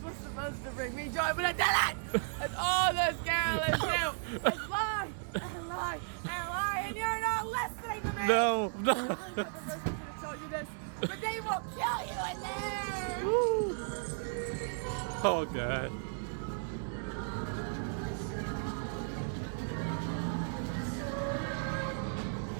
was supposed to bring me joy, but it didn't! That's all those Carolines do is lie and lie and lie, and you're not listening to me! No, no. I'm not the first person to tell you this, but they will kill you in there! Oh God.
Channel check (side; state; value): left; silent; digital silence